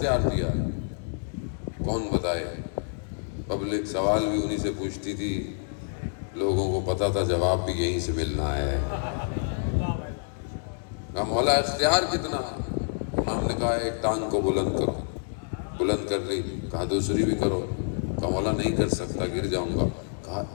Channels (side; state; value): right; silent; digital silence